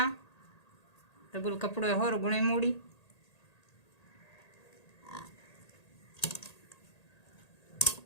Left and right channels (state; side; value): late; right; 1.8 ms